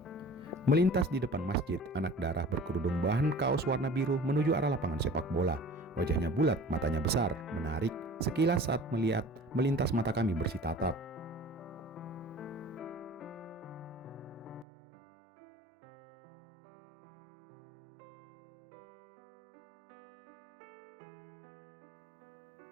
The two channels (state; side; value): drops out; left; at 14.7 s